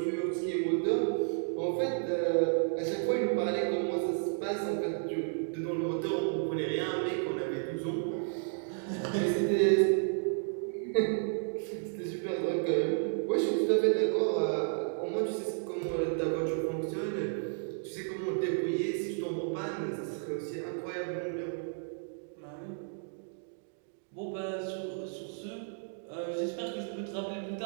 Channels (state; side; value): silent; left; digital silence